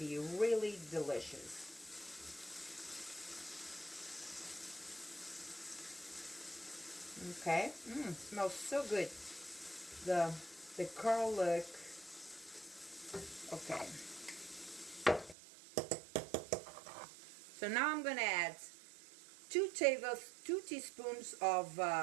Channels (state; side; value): drops out; left; at 15.4 s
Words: really delicious. Okay, smells so good. The garlic. Okay. So now I'm gonna add 2 teaspoons of